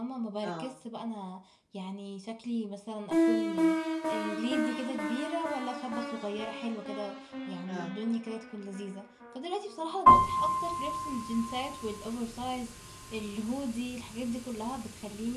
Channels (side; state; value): both; identical; correlation 1.00